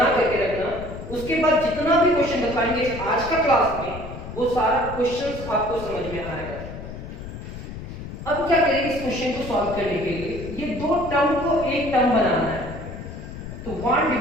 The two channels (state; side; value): noise; left; rumble, 10 dB below the sound